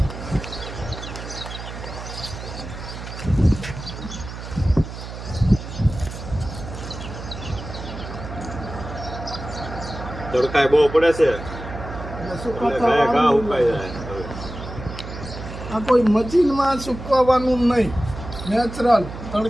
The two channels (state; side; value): noise; right; hum, 10 dB below the sound